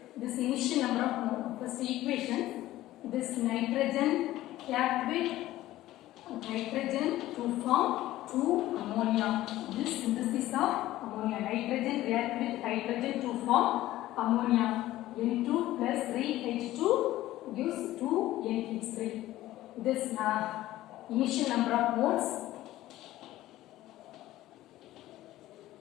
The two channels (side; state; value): right; quieter; 15.4 dB